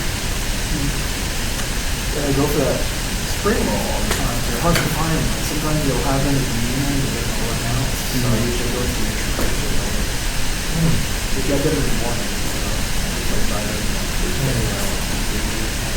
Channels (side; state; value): both; identical; correlation 1.00